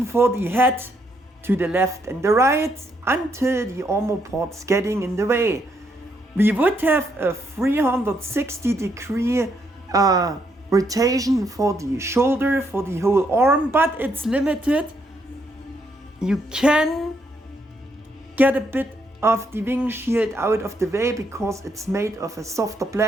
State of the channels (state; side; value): normal; both; correlation 0.75